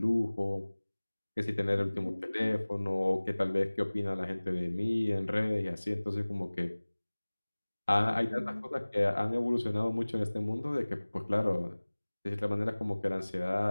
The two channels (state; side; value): inverted; both; correlation -1.00